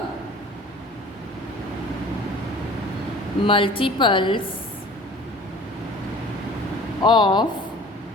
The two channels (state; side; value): normal; both; correlation 0.46